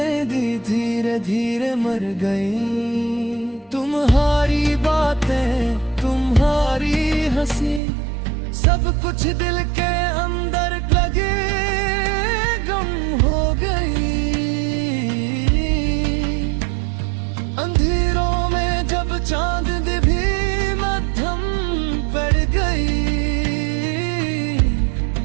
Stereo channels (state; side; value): drops out; left; at 7.8 s